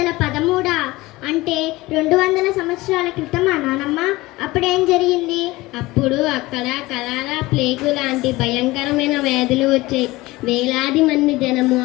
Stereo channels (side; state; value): right; quieter; 19.9 dB